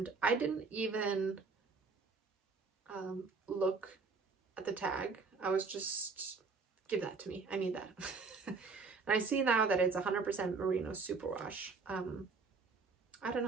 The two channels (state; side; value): quieter; left; 4.5 dB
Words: I didn't even look at the tag. I was just, give that to me. I need that. And I see now that it's 100% merino superwash. I don't